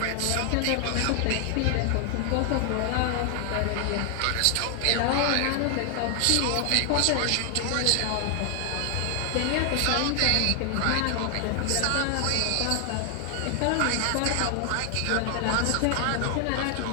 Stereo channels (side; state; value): both; different; correlation 0.00